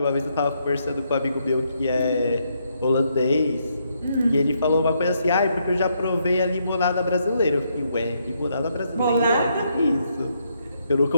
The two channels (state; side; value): inverted; both; correlation -0.76